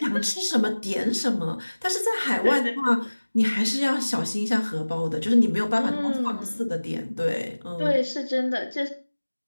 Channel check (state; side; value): inverted; both; correlation -1.00